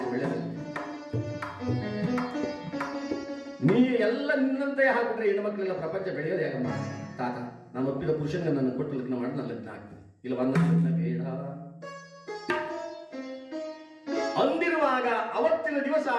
ಒಳ್ಳೆಯದು. ನೀ ಎಲ್ಲ ನಿನ್ನಂತೆ ಹಾಕಿಬಿಟ್ರೆ ಹೆಣ್ಣು ಮಕ್ಕಳೆಲ್ಲ ಪ್ರಪಂಚ ಬೆಳೆಯೋದೇ ಆಗಮ್ಮ. ತಾತ, ನಾನು ಒಪ್ಪಿದ ಪುರುಷನಿಗೆ ನನ್ನ ಕೊಟ್ಟು ಲಗ್ನ ಮಾಡಿ ನಾನು ಲಗ್ನ ಆಗ್ತೀನಿ, ಇಲ್ಲ ಬಂದ ಲಗ್ನ ಬೇಡ ಅಂದಿರುವಾಗ ಅವತ್ತಿನ ದಿವಸ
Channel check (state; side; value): identical; both; correlation 1.00